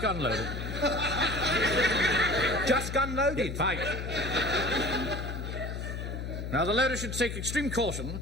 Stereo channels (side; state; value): left; noise; hum, 5 dB below the sound